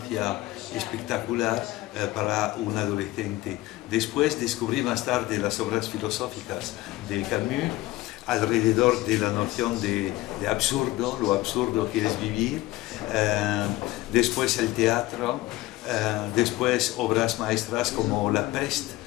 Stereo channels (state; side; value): quieter; right; 18.1 dB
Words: espectacular para un adolescente. Después descubrí más tarde las obras filosóficas de Camus, alrededor de la noción de absurdo, lo absurdo que es vivir, después el teatro, después obras maestras como La Peste.